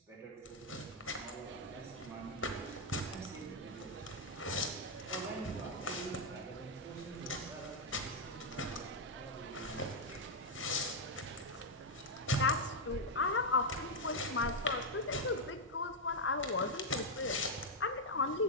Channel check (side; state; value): both; normal; correlation -0.01